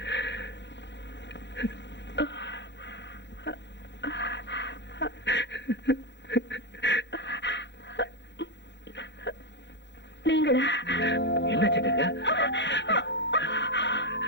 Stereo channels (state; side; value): late; right; 0.52 ms